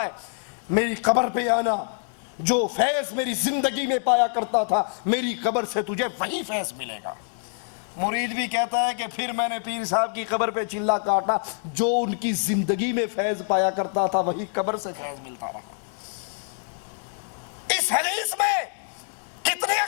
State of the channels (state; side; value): silent; right; 61 dB below the other